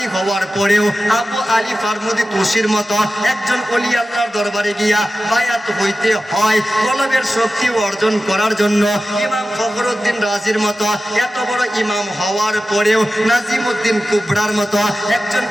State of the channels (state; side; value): normal; both; correlation 0.94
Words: হওয়ার পরেও আবু আলী ফারমুদি তুসির মতো একজন ওলি আল্লাহর দরবারে গিয়া বায়াত হইতে হয়। কলবের শক্তি অর্জন করার জন্য ইমাম ফখরুদ্দিন রাজির মতো এত বড় ইমাম হওয়ার পরেও নাজিমউদ্দিন কুবরার মতো একজন